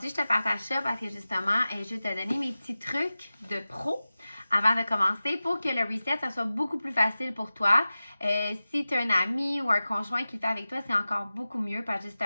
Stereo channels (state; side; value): inverted; both; correlation -0.96